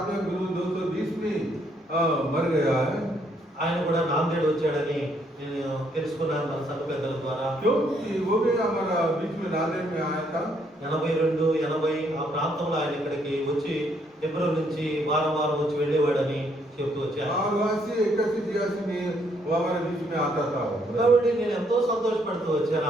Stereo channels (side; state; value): both; normal; correlation 0.70